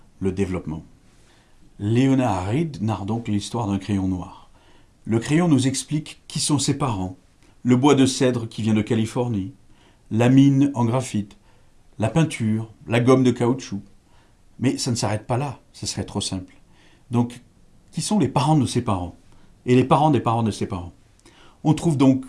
le développement. Leonard Read narre donc l'histoire d'un crayon noir. Le crayon nous explique qui sont ses parents, le bois de cèdre qui vient de Californie, la mine en graphite, la peinture, la gomme de caoutchouc. Mais ça ne s'arrête pas là, ce serait trop simple. Donc, qui sont les parents de ses parents et les parents des parents de ses parents? On trouve donc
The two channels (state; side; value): identical; both; correlation 1.00